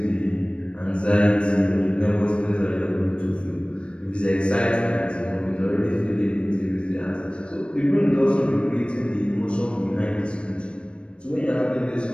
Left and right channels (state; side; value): late; right; 0.058 ms